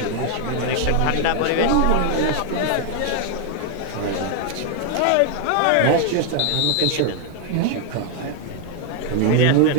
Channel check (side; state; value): both; different; correlation 0.00